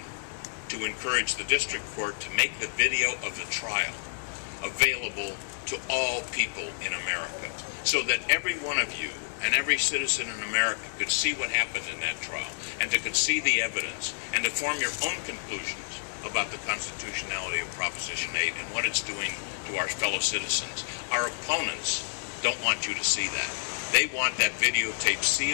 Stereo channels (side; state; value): right; silent; digital silence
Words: to encourage the district court to make the video of the trial available to all people in America, so that every one of you and every citizen in America could see what happened in that trial, and could see the evidence, and to form your own conclusions about the constitutionality of Proposition 8 and what it's doing to our fellow citizens. Our opponents don't want you to see that. They want that videotape